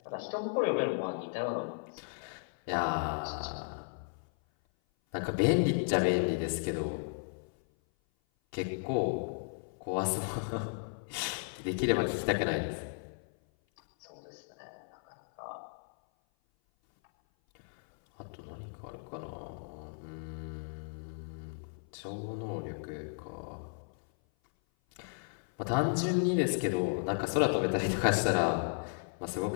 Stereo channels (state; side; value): silent; right; 55 dB below the other